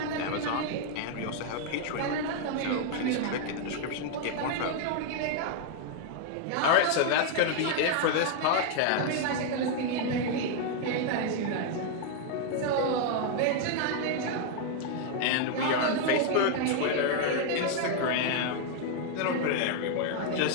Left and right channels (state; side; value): different; both; correlation 0.00